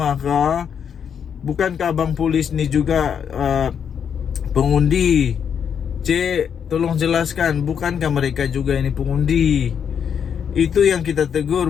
kah? Bukankah abang polis ni juga pengundi? Cik, tolong jelaskan, bukankah mereka juga ini pengundi? Itu yang kita tegur,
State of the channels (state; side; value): quieter; right; 7.7 dB